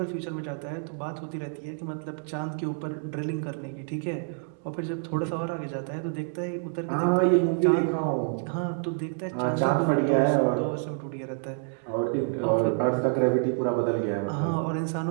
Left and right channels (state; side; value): silent; left; 59 dB below the other